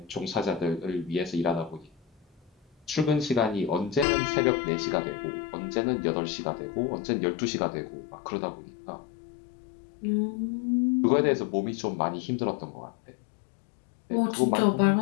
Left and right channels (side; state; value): right; drops out; at 4.0 s